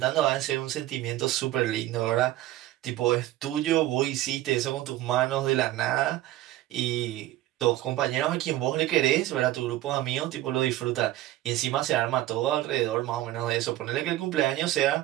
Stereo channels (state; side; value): quieter; left; 15.2 dB